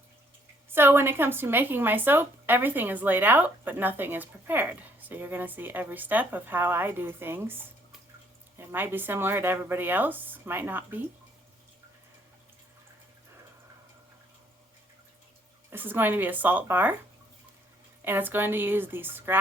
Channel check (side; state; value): both; normal; correlation 0.65